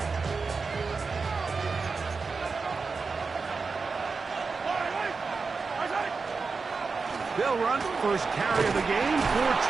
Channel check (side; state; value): left; quieter; 4.6 dB